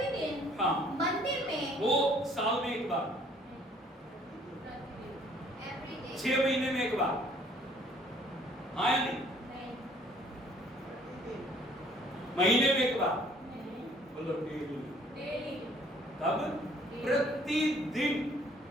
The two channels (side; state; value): both; normal; correlation 0.59